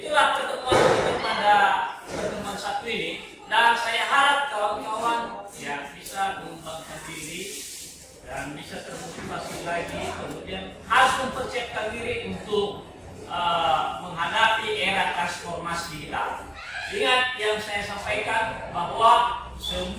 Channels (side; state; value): both; identical; correlation 1.00